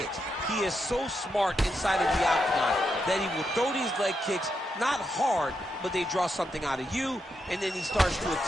He is so smart inside of the octagon that he will throw these leg kicks, not hard, but they draw something out of you, and then he starts to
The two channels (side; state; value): both; normal; correlation 0.83